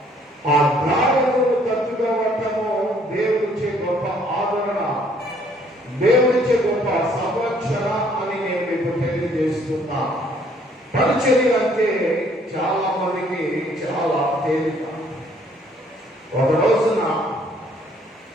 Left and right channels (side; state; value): both; normal; correlation 0.63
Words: ఆ గాయములను తట్టుకోవటము దేవుడిచ్చే గొప్ప ఆదరణ, దేవుడిచ్చే గొప్ప సంరక్షణ అని నేను మీకు తెలియజేస్తున్నా. పరిచర్య అంటే చాలా మందికి చాలా తేలిక. ఒక రోజున